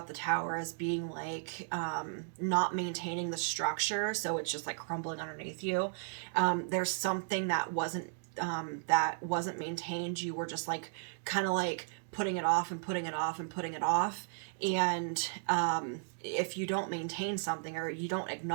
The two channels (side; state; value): left; silent; digital silence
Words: the tower as being like not maintaining the structure, so it's just like crumbling underneath you. There's something that wasn't maintained. You were just like kind of like putting it off and putting it off and putting it off. And if you don't maintain something, or you don't